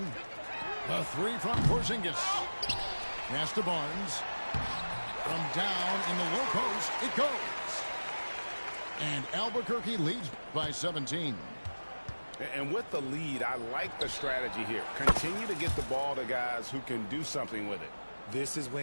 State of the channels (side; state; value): both; inverted; correlation -1.00